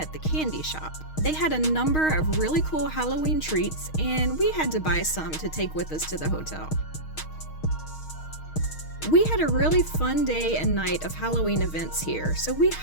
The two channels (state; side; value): late; right; 6.4 ms